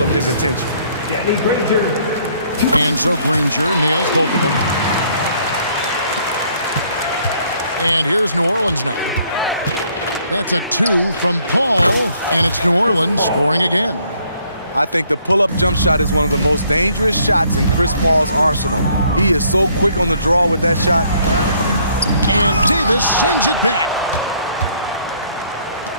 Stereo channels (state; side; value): inverted; both; correlation -0.65